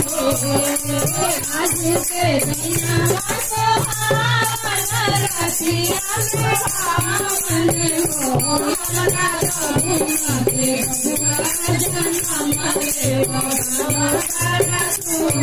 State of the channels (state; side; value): identical; both; correlation 1.00